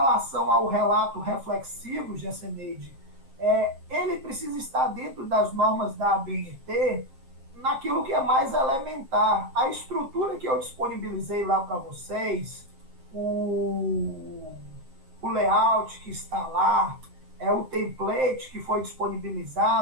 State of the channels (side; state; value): left; late; 7.5 ms